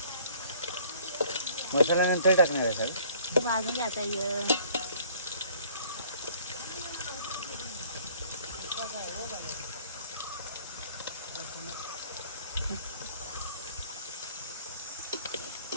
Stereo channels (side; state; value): both; inverted; correlation -0.55